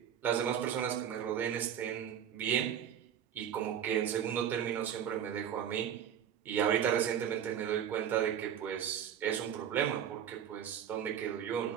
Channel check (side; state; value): left; quieter; 9.3 dB